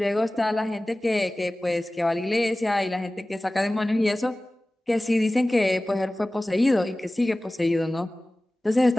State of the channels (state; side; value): normal; both; correlation 0.97